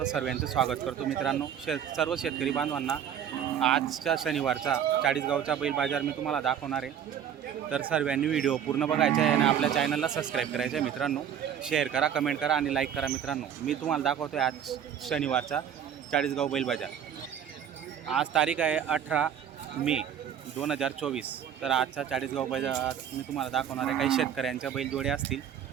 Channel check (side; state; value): left; quieter; 9.0 dB